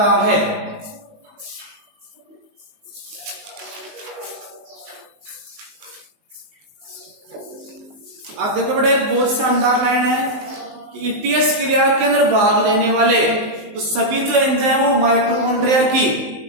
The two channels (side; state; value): left; late; 19 ms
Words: है। आप देखो बेटा, एक बहुत शानदार लाइन है कि ईटीएस क्रिया के अंदर भाग लेने वाले तो सभी जो एंजाइम वो माइटोकॉन्ड्रिया की